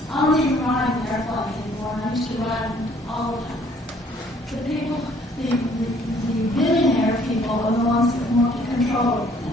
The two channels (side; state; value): both; normal; correlation 0.61